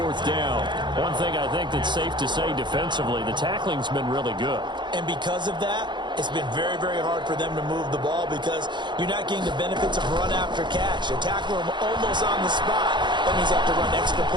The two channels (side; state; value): left; late; 0.22 ms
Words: down. One thing I think that's safe to say defensively, the tackling's been really good. And because of that, it's been very, very hard for them to move the ball because you're not getting the benefits of run after catch. You tackle them almost on the spot. That means you have to run extra